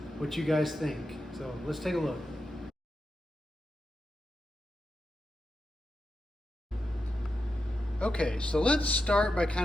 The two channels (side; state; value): both; normal; correlation 0.88